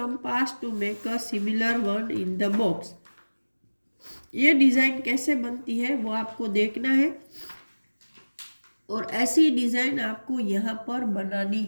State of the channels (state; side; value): inverted; both; correlation -1.00